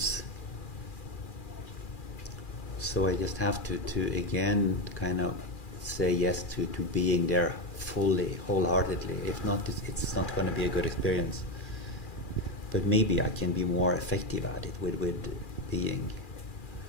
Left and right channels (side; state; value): right; late; 2.4 ms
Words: So I just have to again kind of say yes to being there fully, wholeheartedly. If not, it's not going to be a good experience. But maybe I can be more effective at it with being